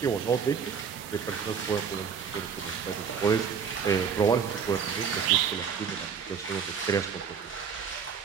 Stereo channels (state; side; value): quieter; left; 6.7 dB